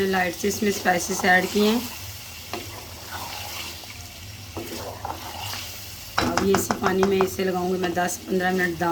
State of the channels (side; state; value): both; identical; correlation 1.00